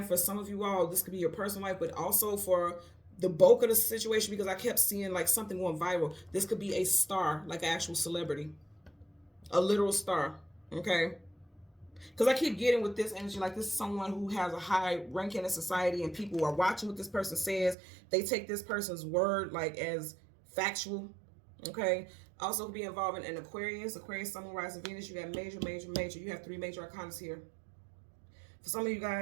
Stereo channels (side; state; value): left; drops out; at 17.8 s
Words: for some of you all, this could be your personal life, but also for the bulk of the situation, because I kept seeing like something going viral. This could be a star, like an actual celebrity, a literal star, okay? Because I keep getting with this energy, like this is someone who has a high ranking in society and people are watching what this person says. They take this person's word like as factual, okay? Also could be involving an Aquarius, Sun, Moon, Rising, Venus. You got major. You have 3 major arcanas here. For some of you